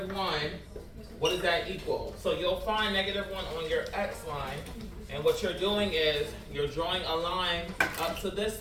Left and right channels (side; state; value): both; identical; correlation 1.00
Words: what does that equal? So you'll find -1 on your x line, and what you're doing is you're drawing a line up to this